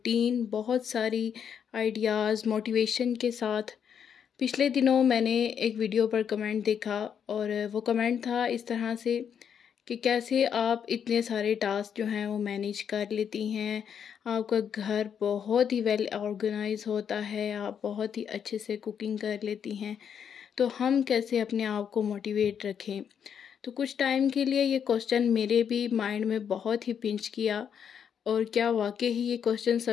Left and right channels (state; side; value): quieter; right; 7.9 dB